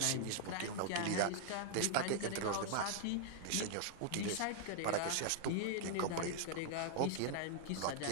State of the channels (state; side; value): different; both; correlation -0.01